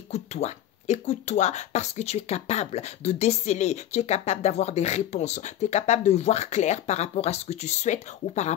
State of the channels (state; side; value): quieter; right; 11.9 dB